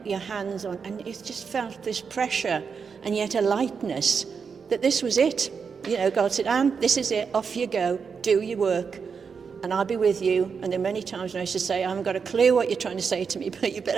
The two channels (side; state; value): left; quieter; 5.9 dB